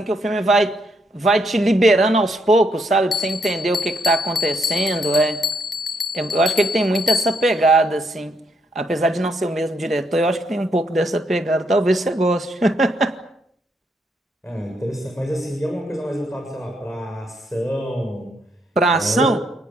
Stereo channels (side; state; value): both; normal; correlation 0.75